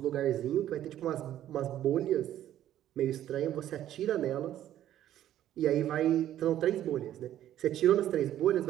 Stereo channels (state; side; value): quieter; left; 12.1 dB